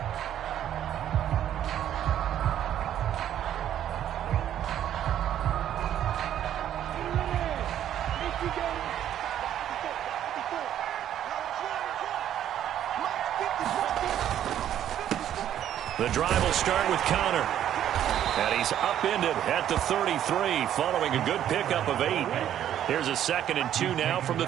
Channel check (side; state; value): left; quieter; 10.8 dB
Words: The drive will start with Connor. And he's upended at the 33 following a good pickup of 8. Here's a 2nd and 2 now from the